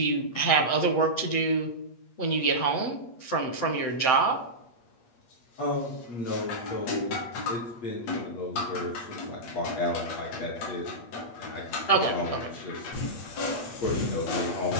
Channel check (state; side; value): late; right; 8.5 ms